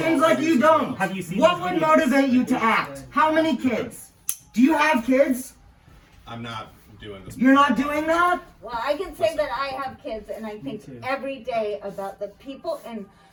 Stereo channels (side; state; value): both; identical; correlation 1.00